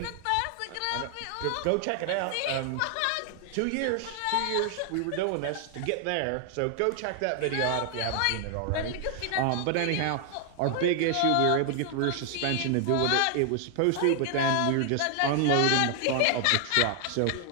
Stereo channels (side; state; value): both; different; correlation 0.00